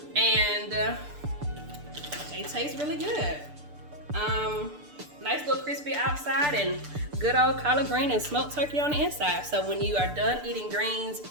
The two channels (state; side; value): late; left; 6.8 ms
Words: And they taste really good. Nice little crispy outside and good old collard green and smoked turkey on the inside. So when you are done eating greens